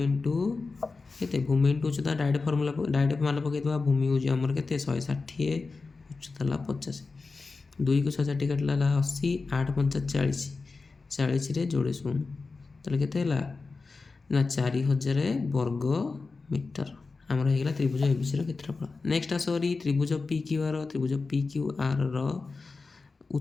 ଇଣ୍ଟୁ କେତେ? ଭୂମି ଇଣ୍ଟୁ ଉଚ୍ଚତା। ଡାଇରେକ୍ଟ ମାନ ପକାଇଦେବା। ଭୂମି ହେଉଛି ଆମର କେତେ? 160, ଉଚ୍ଚତା ହେଲା 50। 2କୁ 160 କାଟିଲା ହେଲା 80, 8 5 40, 40ରେ ଯୋଡ଼େ ଶୂନ। ତାହେଲେ କେତେ ହେଲା ନା 4000 ବର୍ଗ ମିଟର ଆମର ହେଇଗଲା ତ୍ରିଭୁଜ ABCର କ୍ଷେତ୍ରଫଳ। Next ଆସରି ତ୍ରିଭୁଜ PQR। ତ୍ରିଭୁଜ PQRର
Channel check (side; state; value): right; quieter; 4.1 dB